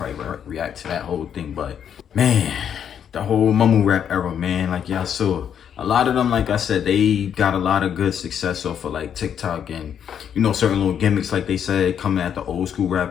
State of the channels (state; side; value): quieter; right; 8.6 dB